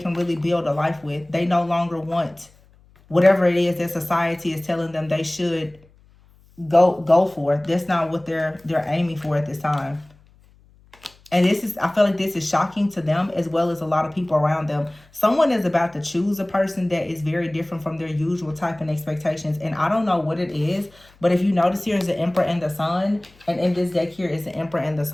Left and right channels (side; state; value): left; noise; hum, 29 dB below the sound